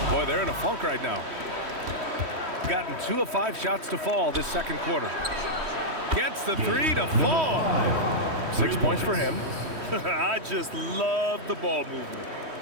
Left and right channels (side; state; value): left; late; 3.1 ms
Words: Boy, they're in a funk right now. Gotten 2 of 5 shots to fall this second quarter. Gets the 3 to fall. 6 points for him. I just love the ball movement.